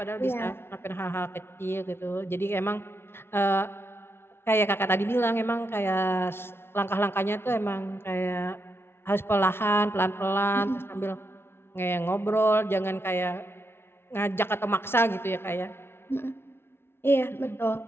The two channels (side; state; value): right; late; 0.12 ms